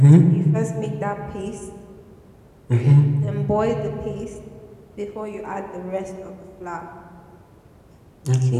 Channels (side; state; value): both; identical; correlation 1.00